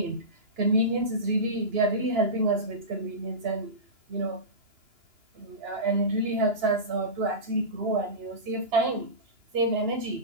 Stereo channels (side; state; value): left; late; 2.9 ms